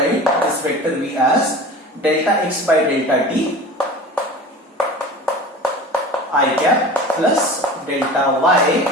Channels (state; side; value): normal; both; correlation 0.36